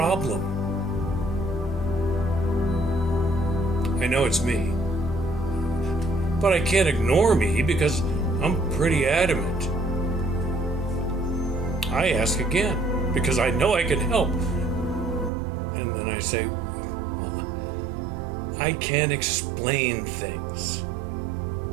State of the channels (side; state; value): left; drops out; at 15.3 s